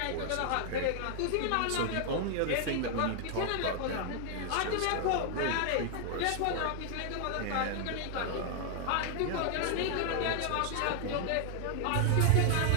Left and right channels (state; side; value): different; both; correlation 0.00